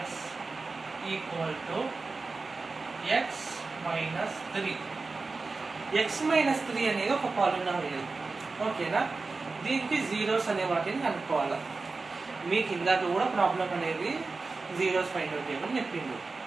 equal to x minus 3. x minus 3 అనేది ఒక పాలినామియల్. ఓకేనా? దీనికి జీరోస్ అనే వాటిని కనుక్కోవాలి. మీకు ఇందాక కూడా ప్రాబ్లం అనేది జీరోస్ ఫైండ్ అవుట్ చేయమని చెప్పిండు.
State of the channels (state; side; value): quieter; left; 3.9 dB